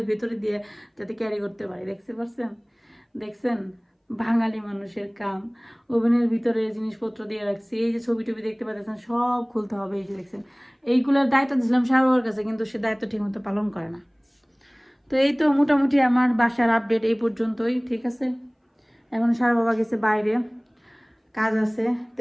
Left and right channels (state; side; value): identical; both; correlation 1.00